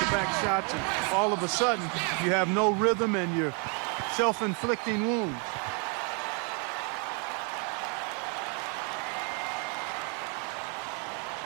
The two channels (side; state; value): left; quieter; 37.2 dB